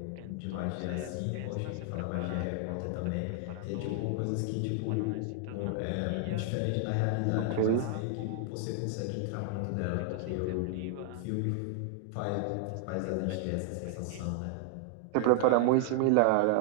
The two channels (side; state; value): both; different; correlation 0.00